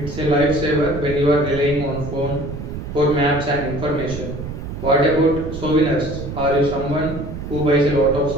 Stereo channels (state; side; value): noise; right; rumble, 8 dB below the sound